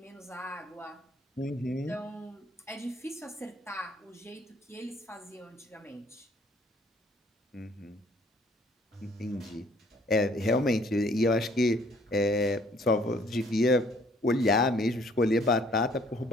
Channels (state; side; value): normal; both; correlation 0.60